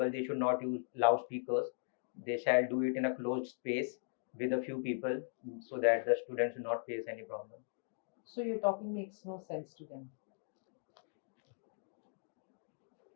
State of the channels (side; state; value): right; silent; digital silence